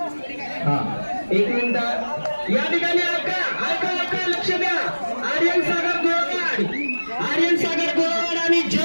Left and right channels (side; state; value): both; inverted; correlation -1.00